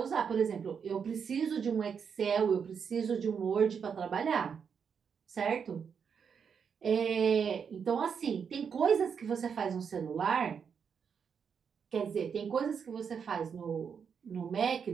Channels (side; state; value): left; quieter; 6.7 dB